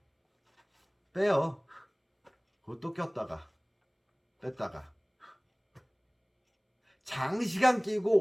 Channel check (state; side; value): identical; both; correlation 1.00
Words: 빼요. 그것도 꼈다가 뺐다가 장시간